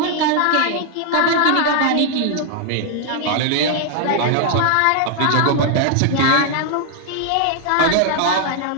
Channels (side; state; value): both; different; correlation 0.00